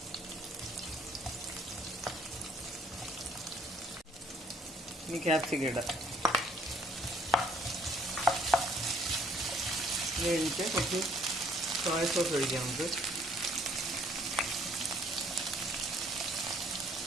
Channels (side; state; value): both; normal; correlation 0.63